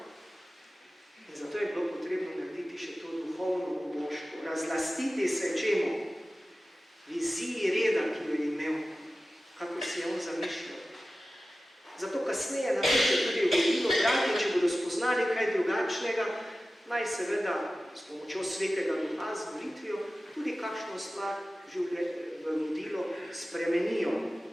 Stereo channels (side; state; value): both; normal; correlation 0.95